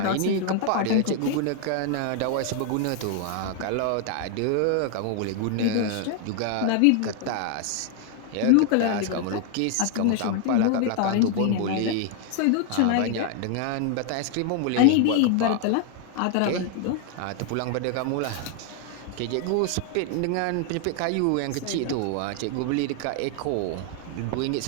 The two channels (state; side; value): different; both; correlation 0.00